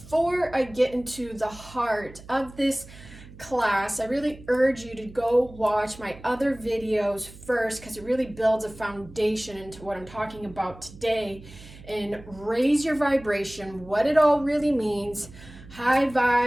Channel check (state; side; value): noise; right; hum, 18 dB below the sound